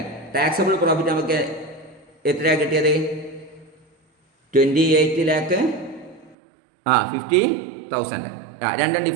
ടാക്സബിൾ പ്രോഫിറ്റ് നമുക്ക് എത്രയാണ് കിട്ടിയത്? 28 lakh 50,000. രണ്ടും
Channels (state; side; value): drops out; left; at 6.4 s